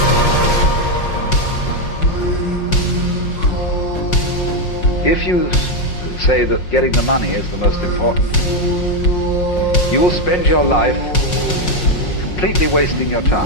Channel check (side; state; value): right; late; 5.5 ms